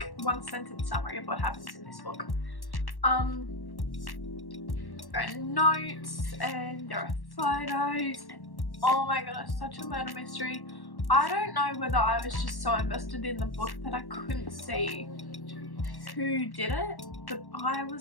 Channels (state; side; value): late; right; 1.1 ms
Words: one-sentence summary of what happens in this book. There are notes and there are photos and oh my goodness, such a murder mystery. I don't know whether I was just so invested in the book that I couldn't see who did it, but I